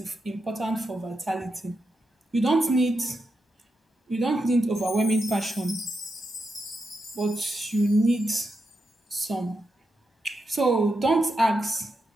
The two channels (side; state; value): both; normal; correlation 0.86